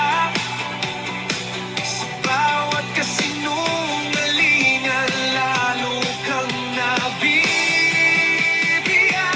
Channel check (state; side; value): identical; both; correlation 1.00